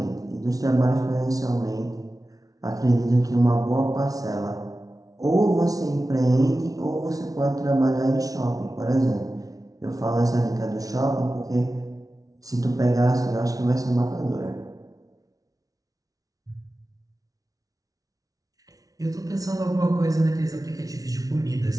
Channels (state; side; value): late; left; 0.18 ms